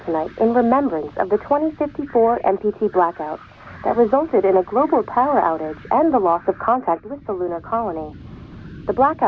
tonight in remembrance of the 2054 MPT blackout that resulted in a global power outage and the loss of contact with the lunar colony. The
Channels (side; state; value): both; identical; correlation 1.00